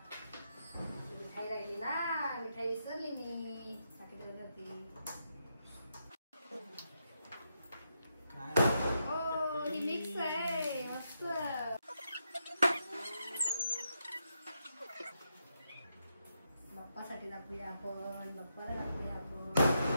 मिठाई राहिली ना मिठाई विसरली मी हो ही मिक्स आहे मस्त बाप्पासाठी दाखवूया आपण बाप्पाला दाखवूया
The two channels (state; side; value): inverted; both; correlation -0.82